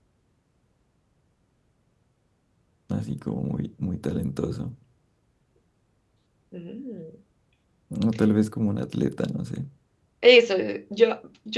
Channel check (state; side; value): identical; both; correlation 1.00